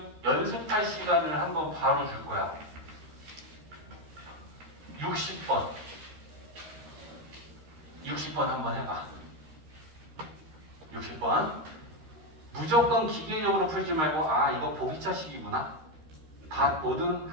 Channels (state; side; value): late; left; 13 ms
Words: 연습할 시간을 한번 바로 줄 거야. 60번. 60번 한번 해봐. 60번. 무조건 기계적으로 풀지 말고 아 이거 보기차식이구나. 다 모든